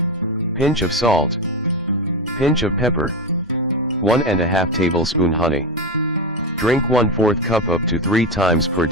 pinch of salt, pinch of pepper, 1½ tablespoon honey. Drink 1/4 cup up to 3 times per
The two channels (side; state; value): both; normal; correlation 0.16